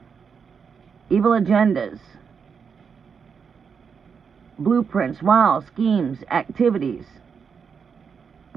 evil agendas. blueprints, wiles, schemes, activities.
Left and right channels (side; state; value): left; quieter; 6.3 dB